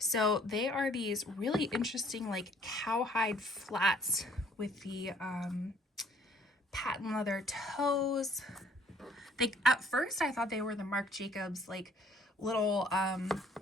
they are these really interesting like cowhide flats with the patent leather toes. At first I thought they were the Marc Jacobs like little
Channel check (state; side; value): normal; both; correlation 0.60